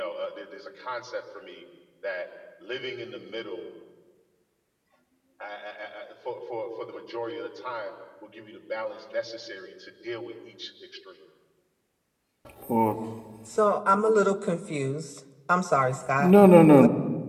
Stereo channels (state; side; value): identical; both; correlation 1.00